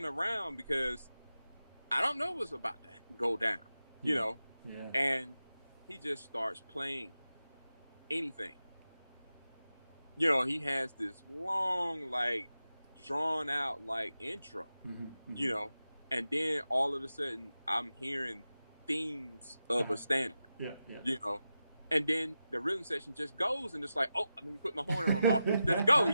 around because I don't know what's about to go down, Yeah. and he just starts playing anything. He has this long, like, drawn out, like, intro, and then all of a sudden I'm hearing themes of a standard, and then the rhythm section just goes and it's like, oh, let me put my horn in my mouth, let's go,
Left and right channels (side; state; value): both; inverted; correlation -0.91